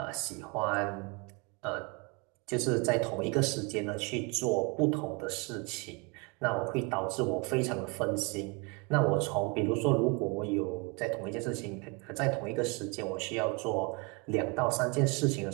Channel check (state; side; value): quieter; left; 29.7 dB